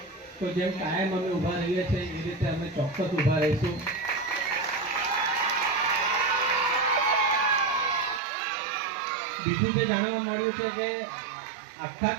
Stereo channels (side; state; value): left; drops out; at 8.2 s